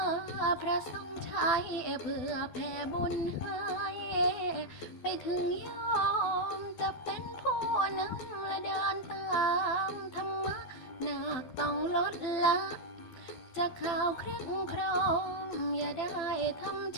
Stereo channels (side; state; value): right; late; 12 ms